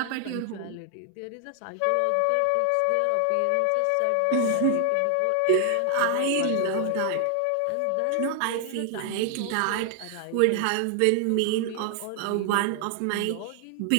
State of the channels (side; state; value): both; different; correlation 0.00